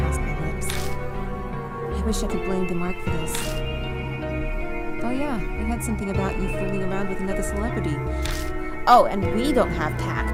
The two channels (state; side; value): identical; both; correlation 1.00